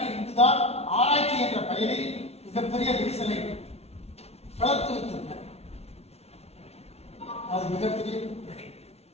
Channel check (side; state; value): right; late; 0.31 ms